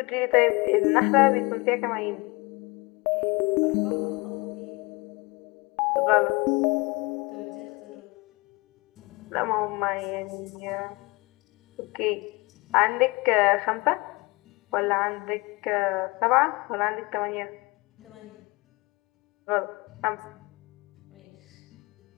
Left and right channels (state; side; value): quieter; right; 25.5 dB